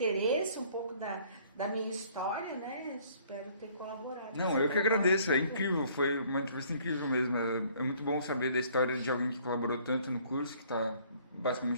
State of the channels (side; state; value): both; inverted; correlation -0.58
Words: um pouco da minha história, né? Espero ter colaborado. Não, eu que agradeço, é incrível, foi uma entrevista incrível mesmo. É muito bom saber da história de alguém que colaborou tanto no curso, que está